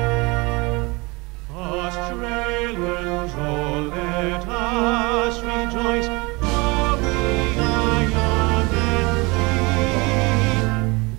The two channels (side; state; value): left; quieter; 25.8 dB